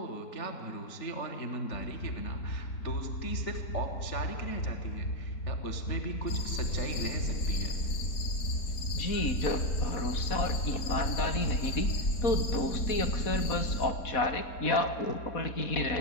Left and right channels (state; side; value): late; right; 4.1 ms